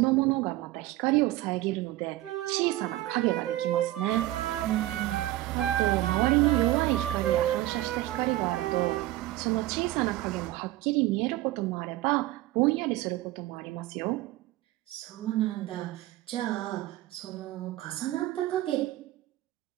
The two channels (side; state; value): left; quieter; 16.2 dB